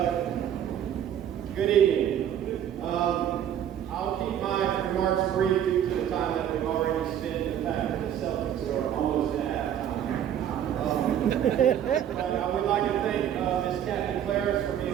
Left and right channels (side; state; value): left; quieter; 10.0 dB